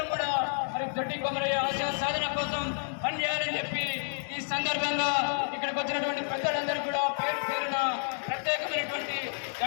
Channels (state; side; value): silent; right; digital silence